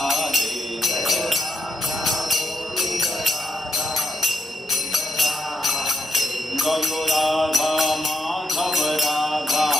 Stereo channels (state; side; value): normal; both; correlation 0.78